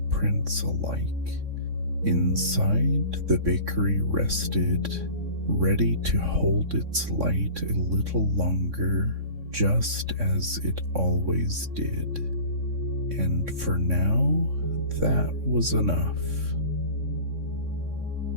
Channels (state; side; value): late; left; 3.6 ms